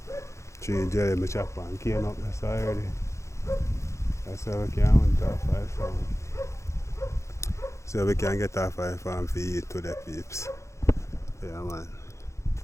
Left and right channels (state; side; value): late; right; 0.14 ms